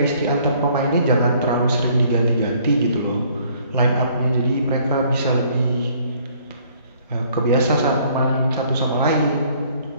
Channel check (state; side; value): inverted; both; correlation -0.61